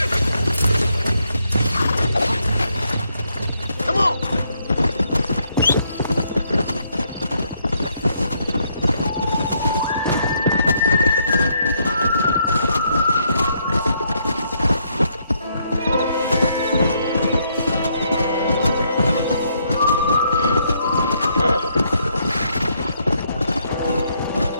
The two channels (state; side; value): inverted; both; correlation -0.73